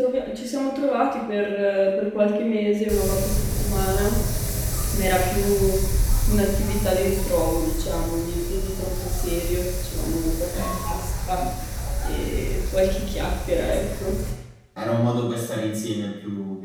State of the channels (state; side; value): identical; both; correlation 1.00